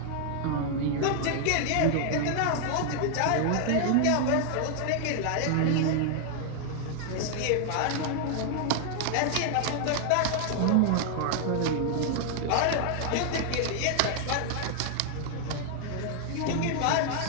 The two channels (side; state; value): both; different; correlation 0.00